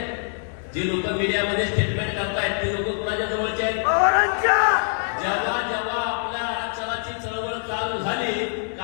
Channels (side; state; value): right; silent; digital silence